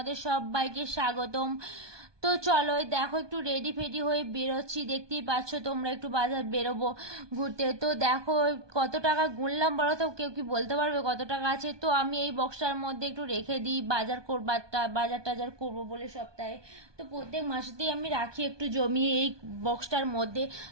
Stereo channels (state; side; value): late; left; 1.2 ms